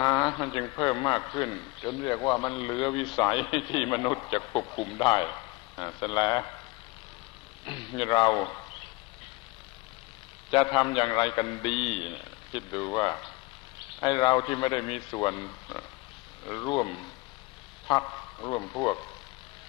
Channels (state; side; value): quieter; right; 23.5 dB